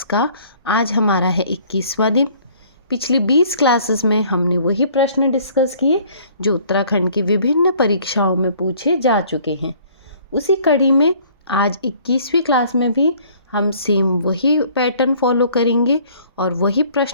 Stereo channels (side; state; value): both; inverted; correlation -0.56